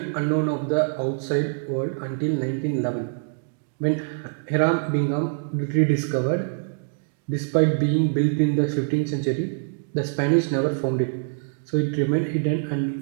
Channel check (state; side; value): silent; left; digital silence